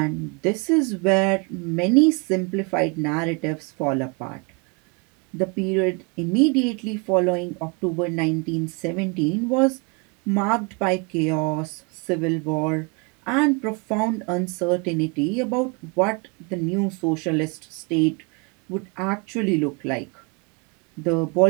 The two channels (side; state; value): left; quieter; 31.0 dB